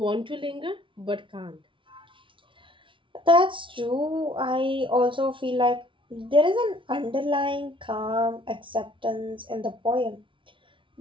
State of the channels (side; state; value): left; late; 0.25 ms